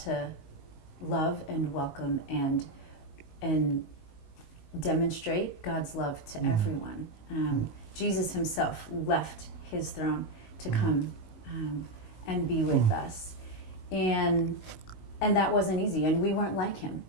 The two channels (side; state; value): right; late; 19 ms